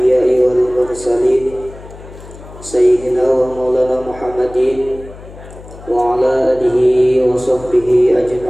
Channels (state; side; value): noise; left; hum, 18 dB below the sound